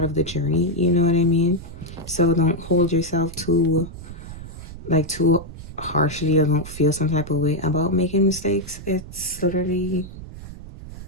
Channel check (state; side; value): noise; right; rumble, 12 dB below the sound